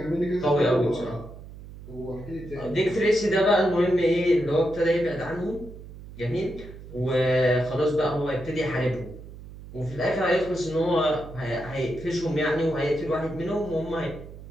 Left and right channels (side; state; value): right; noise; hum, 15 dB below the sound